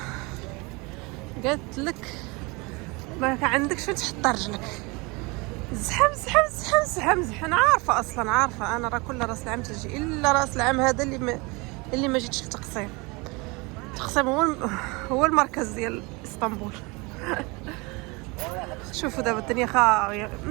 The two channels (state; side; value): quieter; left; 26.7 dB